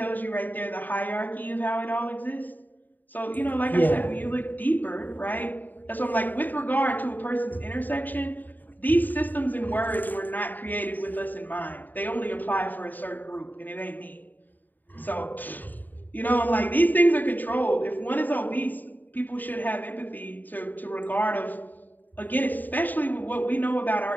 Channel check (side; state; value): right; late; 0.087 ms